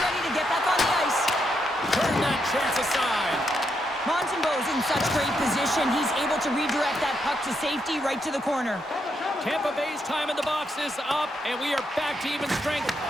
to get back on the ice. Turn that chance aside. Montembeau's in such great position. He's able to redirect that puck to safety right to the corner. Tampa Bay's time in the box is up, and we are back to even strength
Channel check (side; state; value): both; normal; correlation 0.80